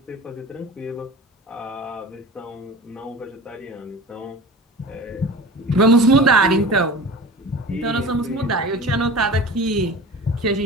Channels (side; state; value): both; normal; correlation 0.36